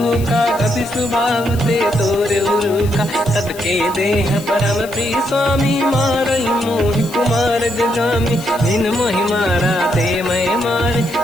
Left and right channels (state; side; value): noise; left; hiss, 17 dB below the sound